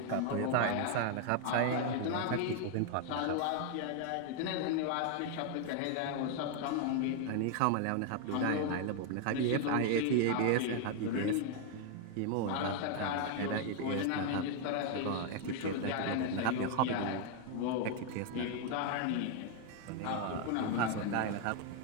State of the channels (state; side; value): different; both; correlation 0.00